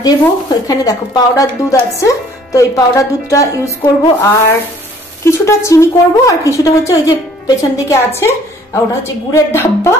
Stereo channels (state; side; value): normal; both; correlation 0.57